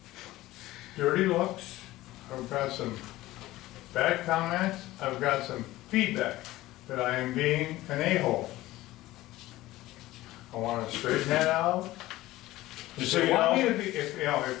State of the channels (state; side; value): quieter; right; 17.0 dB